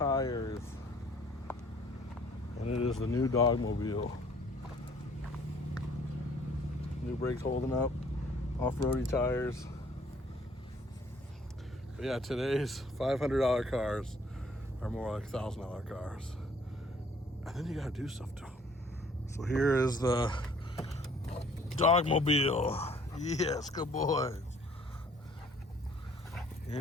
And it is the new Dogmobile. New brakes holding up, off-roady tires. But yeah, today's $500 cars are more like $1,000 cars. And then you gotta do stuff to them. So here is the Dogmobile. Yes, good boys.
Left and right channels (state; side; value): normal; both; correlation 0.58